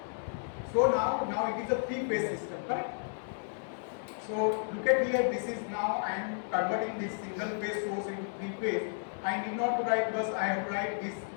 So now it is a three-phase system, correct? So look at here, this is now I am converting this single phase source into three phase. I need not to write because I have to write this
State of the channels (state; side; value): silent; right; digital silence